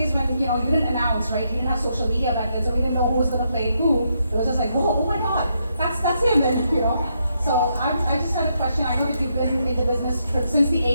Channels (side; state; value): both; inverted; correlation -0.79